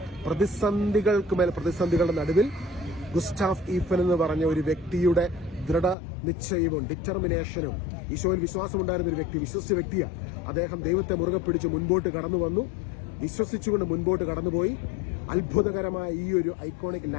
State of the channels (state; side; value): drops out; right; at 6.0 s